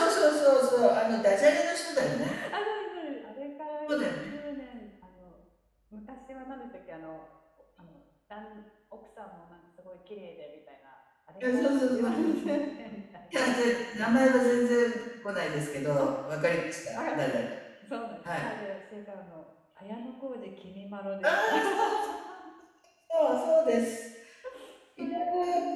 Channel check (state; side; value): identical; both; correlation 1.00